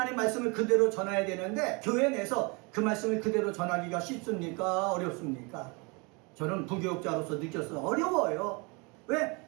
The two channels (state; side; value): quieter; left; 29.8 dB